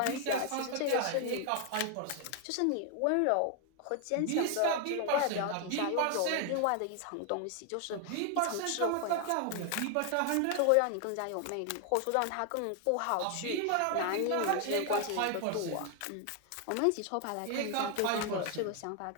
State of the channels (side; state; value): both; different; correlation 0.00